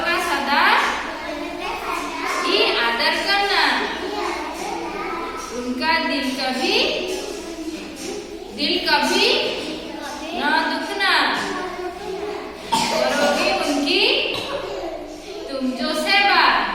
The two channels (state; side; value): identical; both; correlation 1.00